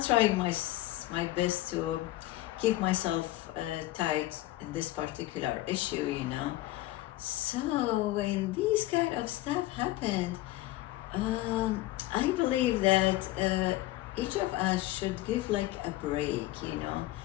trying my best to keep myself tight in this particular issue, So when these kind of stuff happen, I believe that each of us should give like a break,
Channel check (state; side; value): quieter; right; 16.9 dB